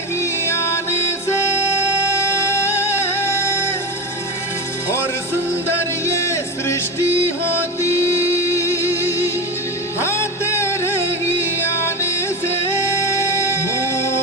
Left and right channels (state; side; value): normal; both; correlation 0.22